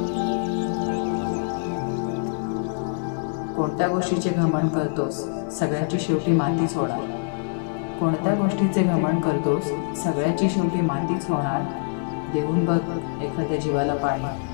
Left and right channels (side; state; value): right; silent; digital silence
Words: कोणत्या गोष्टीचे घमंड करतोस, सगळ्याची शेवटी मातीच होणार. कोणत्या गोष्टीचे घमंड करतोस, सगळ्याची शेवटी मातीच होणार. देऊन बघ एखाद्या जीवाला